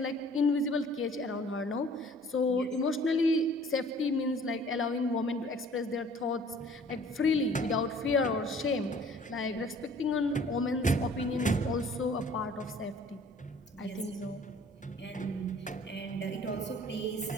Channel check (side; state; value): both; normal; correlation 0.53